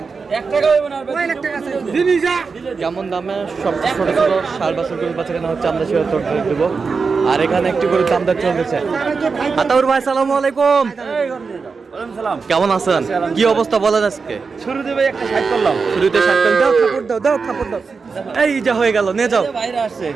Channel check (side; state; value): left; quieter; 4.9 dB